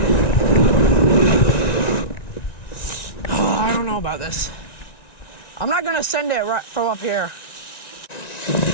Oh, I don't know about this. I'm not gonna send it right from up here.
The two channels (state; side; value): late; right; 1.9 ms